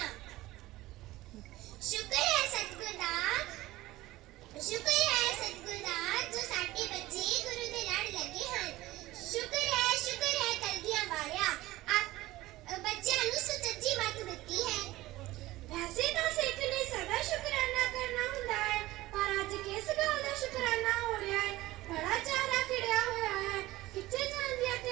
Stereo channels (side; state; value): left; quieter; 17.7 dB